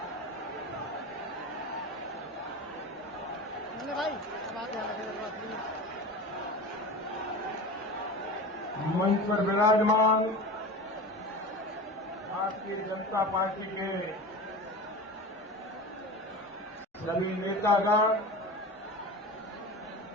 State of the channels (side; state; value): both; normal; correlation 0.31